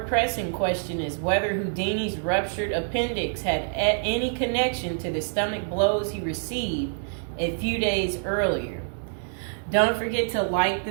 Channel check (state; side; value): silent; left; digital silence